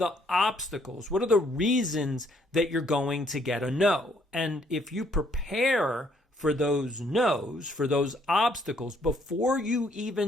obstacles? What are the reasons that you're going to get a no? And if you prepare for those no's, for those obstacles, before you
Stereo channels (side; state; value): both; normal; correlation 0.67